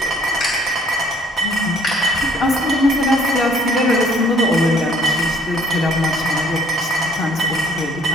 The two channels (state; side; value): normal; both; correlation 0.58